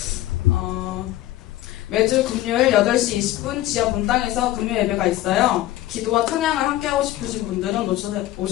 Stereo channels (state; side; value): quieter; right; 15.0 dB